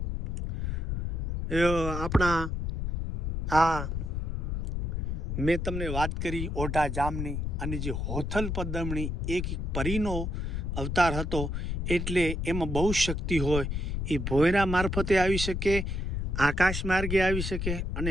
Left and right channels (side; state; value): left; noise; rumble, 2 dB below the sound